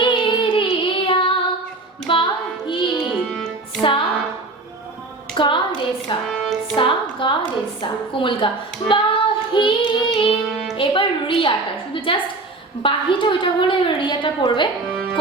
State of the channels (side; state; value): left; quieter; 3.2 dB